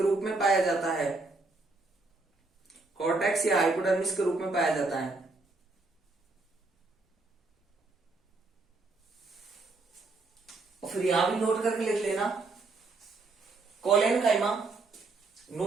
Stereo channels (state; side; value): quieter; left; 3.5 dB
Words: रूप में पाया जाता है, कॉर्टेक्स या हाइपोडर्मिस के रूप में पाया जाता है। और फिर यहां भी नोट करके लिख लेना कोलेन काइमा,